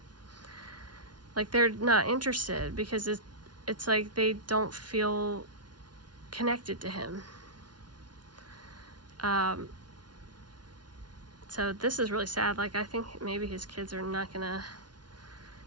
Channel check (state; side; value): late; left; 0.70 ms